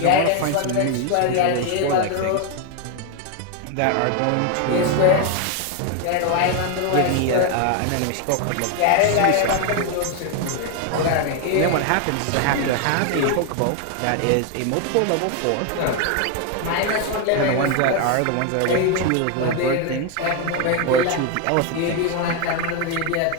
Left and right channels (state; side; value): different; both; correlation 0.01